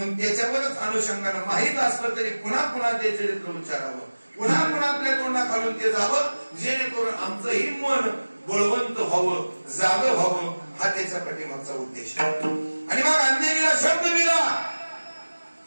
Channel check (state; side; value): inverted; both; correlation -1.00